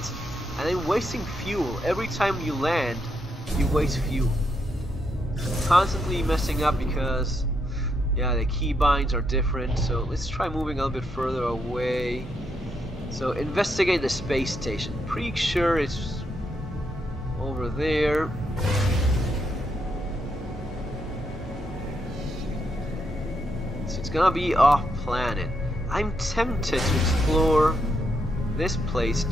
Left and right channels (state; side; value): normal; both; correlation 0.79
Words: and I'm wasting fuel. Every time you land, you waste fuel. Constantly messing up because... yeah, the keybinds are different, so let's try moving a little bit further away. So, investigate the space station. Pretty sure it's over there. So it's gonna be off planet. I'm tempted to explore this place